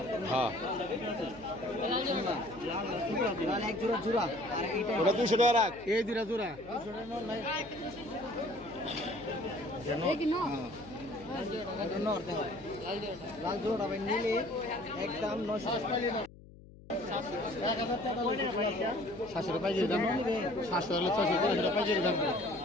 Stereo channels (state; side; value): noise; left; hum, 20 dB below the sound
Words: হ্যাঁ লাল জোড়া লাল এক জোড়া জোড়া আর এইটা ওটা 200 টাকা রাখ এই দুইটা জোড়া 200 টাকা নর নাই লাল জোড়া ভাই নিলে একদম 900 700 টাকা পাইছি দাম 700 হলে 600 টাকা পাইছি দাম